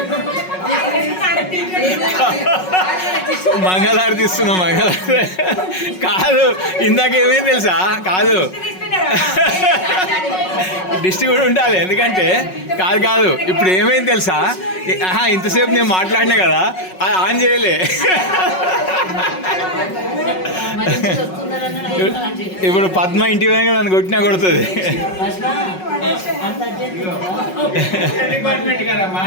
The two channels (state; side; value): late; right; 5.4 ms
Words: మంగళారతి ఇస్తున్నా మంగళారతి కాదు ఇందాక ఏమైంది తెలుసా కాదు డిస్ట్రిక్ట్ కూడా ఉండాలి ఎందుకంటే కాదు కాదు ఇప్పుడు ఏమైంది తెలుసా ఇంతసేపు నేను మాట్లాడినా కదా అది ఆన్ చేయలే ఇప్పుడు పద్మ ఇంటి వెనక నన్ను కొట్టినా కొడుతుంది